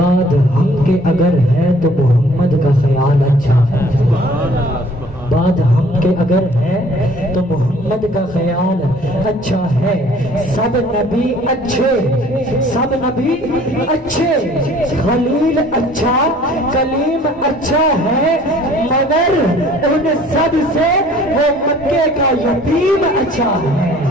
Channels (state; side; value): normal; both; correlation 0.54